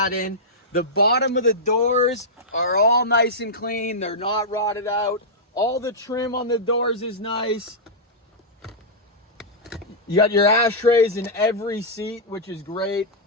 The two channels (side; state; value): both; normal; correlation -0.11